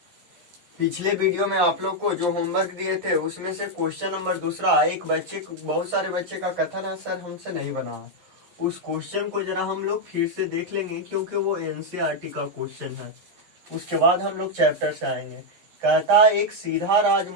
पिछले वीडियो में आप लोग को जो होमवर्क दिए थे उसमें से क्वेश्चन नंबर दूसरा, एक बच्चे बहुत सारे बच्चे का कथन है सर हमसे नहीं बना। उस क्वेश्चन को जरा हम लोग फिर से देख लेंगे क्योंकि वो एनसीईआरटी का क्वेश्चन है। उसके बाद हम लोग चैप्टर से आएंगे। कहता है एक सीधा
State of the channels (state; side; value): late; left; 11 ms